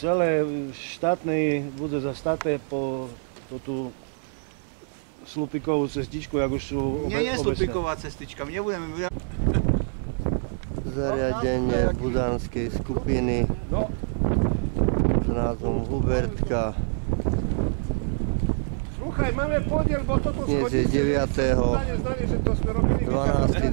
štátnej bude zastaté po tú slupikovú cestičku, jak už sú Nie je slupiková cestička, my nebudeme... Zariadenie budanskej skupiny s názvom Hubertka. Sluchaj, máme podiel, bo toto Dnes je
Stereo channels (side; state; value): left; silent; 61 dB below the other